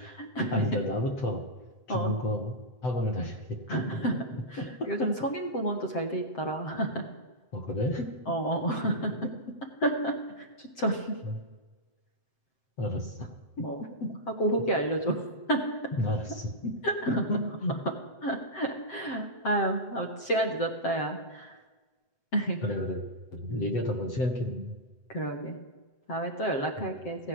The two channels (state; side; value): late; right; 7.7 ms